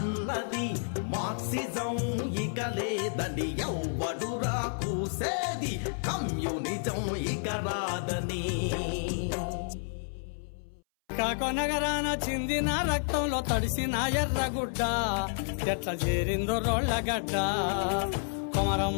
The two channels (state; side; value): silent; right; 58 dB below the other